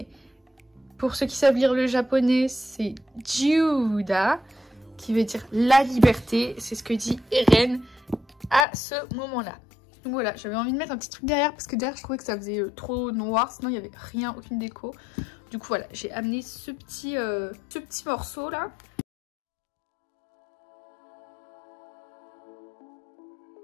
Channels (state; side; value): drops out; right; at 8.7 s